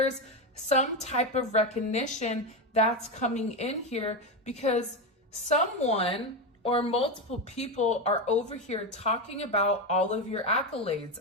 some type of recognition that's coming in here because someone or multiple people are over here talking about all of your accolades,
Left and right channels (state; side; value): normal; both; correlation 0.13